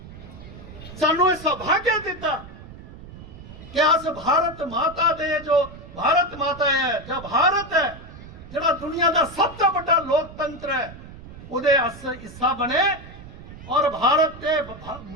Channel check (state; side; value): noise; right; rumble, 16 dB below the sound